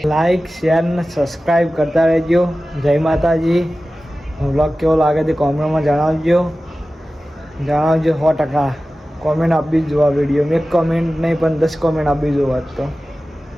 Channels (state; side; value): normal; both; correlation 0.95